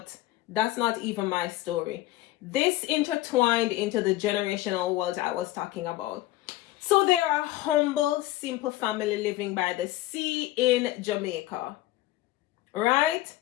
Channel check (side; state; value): right; quieter; 16.5 dB